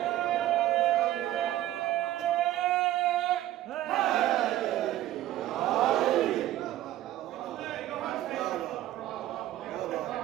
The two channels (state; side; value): quieter; left; 14.0 dB